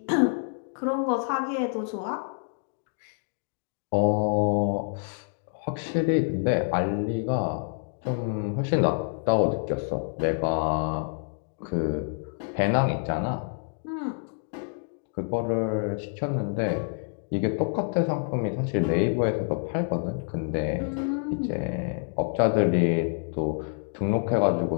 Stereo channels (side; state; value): right; silent; 60 dB below the other